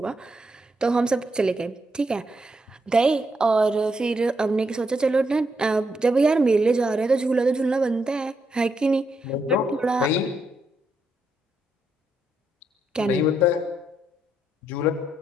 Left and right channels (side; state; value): both; normal; correlation 0.80